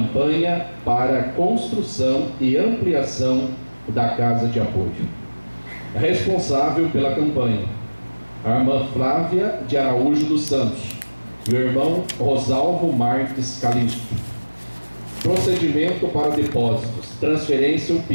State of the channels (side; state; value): both; inverted; correlation -1.00